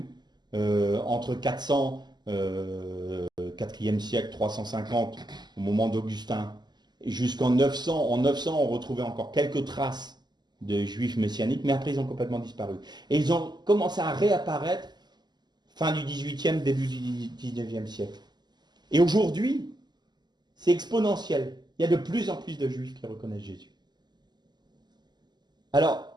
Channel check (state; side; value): late; left; 0.21 ms